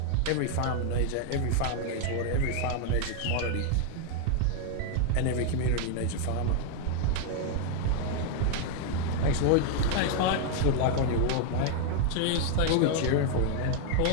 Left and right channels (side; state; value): both; different; correlation 0.00